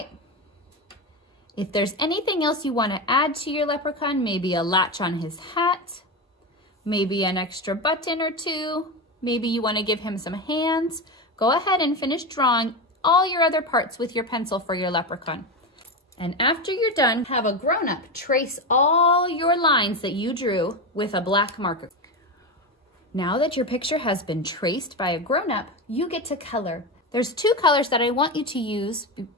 If there's anything else you want to add to your leprechaun, maybe a latch on his hat, maybe an extra button or two. Maybe you want to give him some hands. Go ahead and finish drawing all your other parts with your pencil for your leprechaun. And after you're done, have a grown-up trace all your lines that you drew with a black marker. Now that your picture has been traced by a grown-up, you get to color. There's two colors that I want you to use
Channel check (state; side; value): normal; both; correlation 0.18